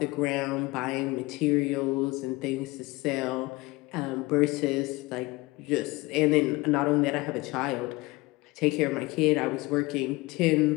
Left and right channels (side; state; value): right; quieter; 22.4 dB